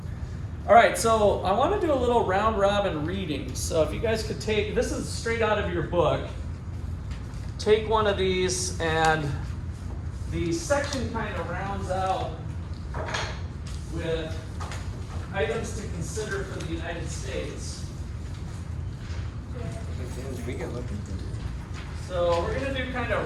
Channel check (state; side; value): identical; both; correlation 1.00